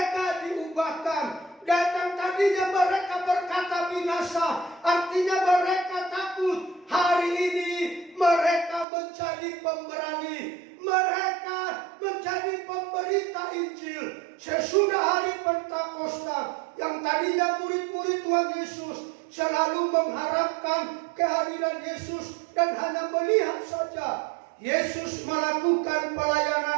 diubahkan. Datang tadinya mereka berkata binasa, artinya mereka takut. Hari ini mereka menjadi pemberani, mereka menjadi pemberita Injil. Sesudah hari Pentakosta, yang tadinya murid-murid Tuhan Yesus selalu mengharapkan kehadiran Yesus dan hanya melihat saja, Yesus melakukan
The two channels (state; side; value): drops out; left; at 8.8 s